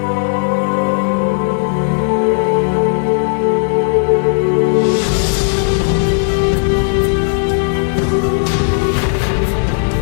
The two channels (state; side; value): silent; right; digital silence